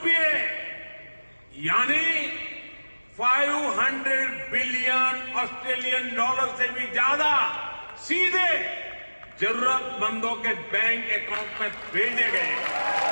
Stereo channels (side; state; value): both; inverted; correlation -1.00